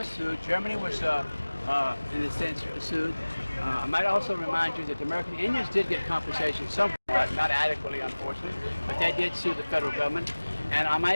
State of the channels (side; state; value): both; inverted; correlation -1.00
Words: sued. Germany was, in a sense, sued. I might also remind you that the American Indians did get compensation somewhat, not adequately, unfortunately, but they did sue the federal government. And I